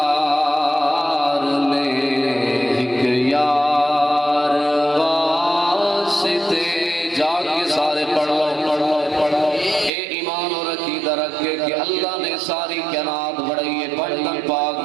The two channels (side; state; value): left; drops out; at 9.9 s